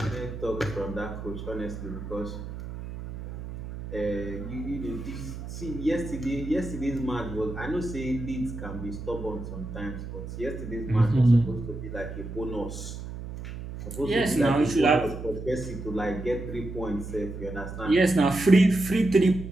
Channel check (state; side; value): noise; right; hum, 9 dB below the sound